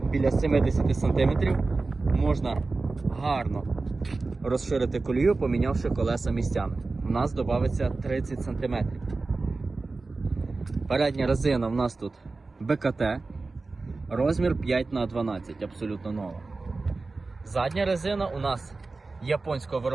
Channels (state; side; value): quieter; left; 3.7 dB